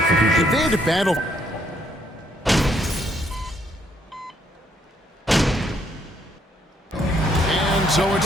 If they had to battle... And so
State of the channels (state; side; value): normal; both; correlation 0.70